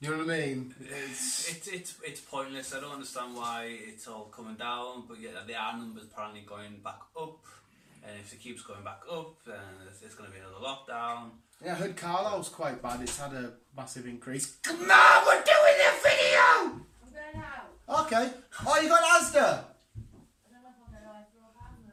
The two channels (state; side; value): identical; both; correlation 1.00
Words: know what I mean? It's pointless. I don't understand why it's all coming down, but yeah, the R numbers apparently going back up. And if it keeps going back up, then it's going to be another lockdown. Yeah, I heard Carlisle's quite bad. It's had a massive increase. Come on, we're doing a video! I'm going out. Okay. Oh, you got Asda? I don't know if I'm going to throw a pan